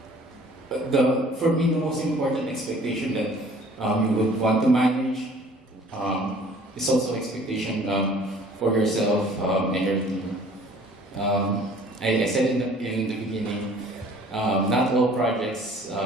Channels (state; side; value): normal; both; correlation 0.53